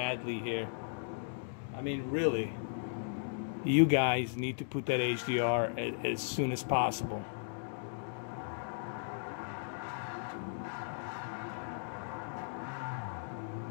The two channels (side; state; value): right; silent; digital silence